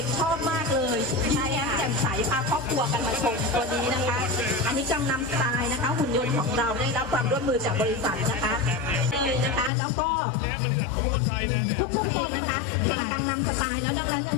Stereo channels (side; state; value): right; drops out; at 9.7 s